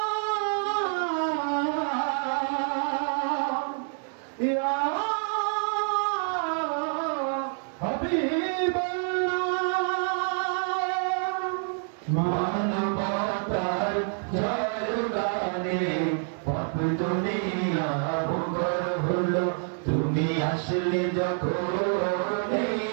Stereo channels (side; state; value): left; silent; 56 dB below the other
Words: ইয়া হাবিবাল্লাহ। মানবতার জয়গানে পাপ দুনিয়া মুখর হলো। তুমি আসলে যখন এই